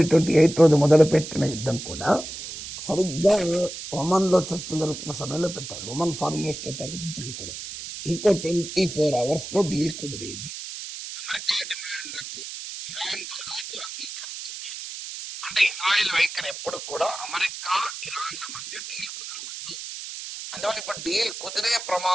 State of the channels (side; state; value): right; noise; hiss, 9 dB below the sound